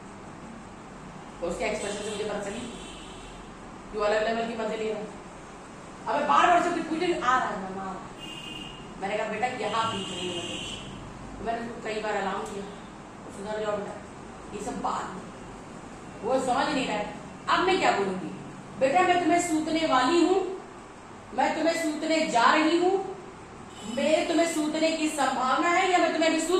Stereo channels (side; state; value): both; identical; correlation 1.00